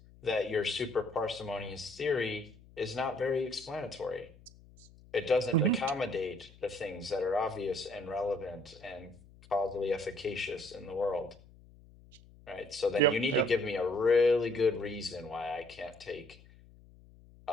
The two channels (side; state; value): left; noise; hum, 23 dB below the sound